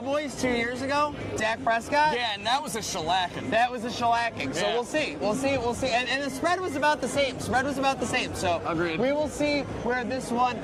2 years ago, Dak Prescott. Yeah, and that was a shellacking. So Yeah. we'll see. And the spread was about the same. So Agreed. we will see where this one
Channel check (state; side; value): identical; both; correlation 1.00